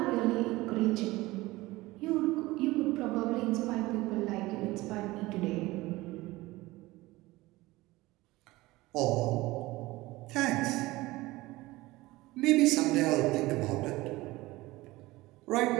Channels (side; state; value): left; quieter; 19.6 dB